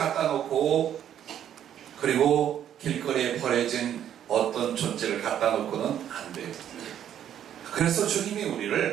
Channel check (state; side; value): quieter; left; 10.2 dB